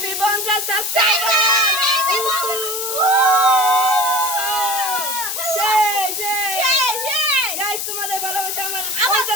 50 subscriber. Guys তোমাদের ভালোবাসা আমার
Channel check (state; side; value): noise; left; hiss, 4 dB below the sound